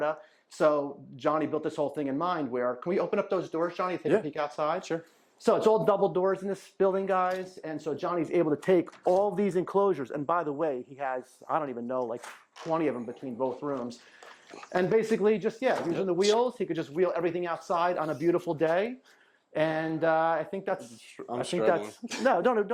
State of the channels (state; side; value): identical; both; correlation 1.00